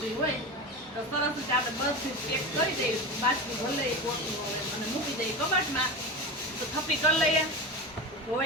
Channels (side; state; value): both; normal; correlation 0.25